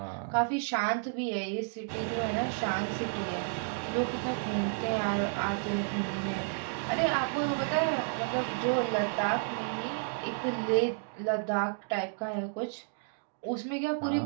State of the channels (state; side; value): silent; left; digital silence